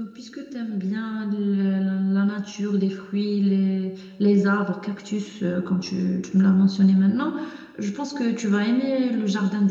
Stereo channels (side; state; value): both; identical; correlation 1.00